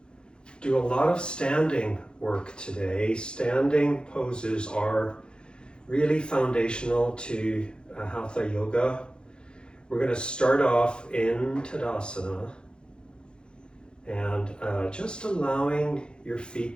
do a lot of standing work today. Standing poses are really foundational to Hatha Yoga. We're going to start off in Tadasana and just allowing your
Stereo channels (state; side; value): late; right; 0.050 ms